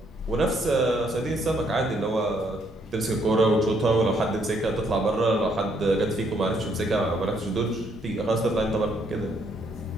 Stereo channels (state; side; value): normal; both; correlation 0.70